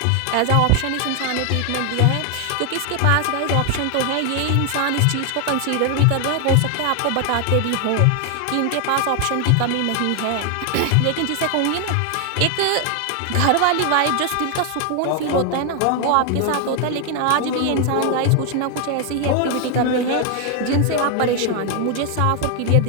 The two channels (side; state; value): both; different; correlation 0.00